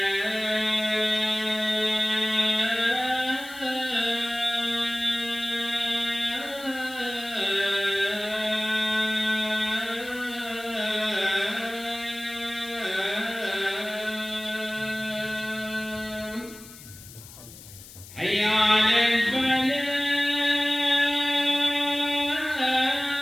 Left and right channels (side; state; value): left; noise; hiss, 18 dB below the sound